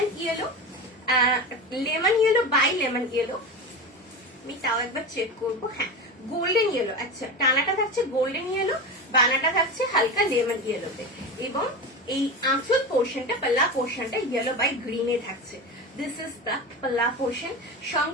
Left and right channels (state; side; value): normal; both; correlation 0.25